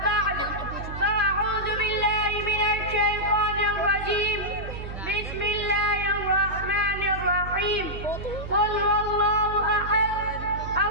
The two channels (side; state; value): right; noise; hum, 9 dB below the sound